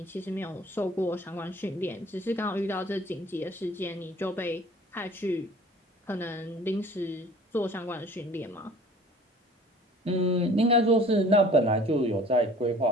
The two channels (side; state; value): both; normal; correlation 0.48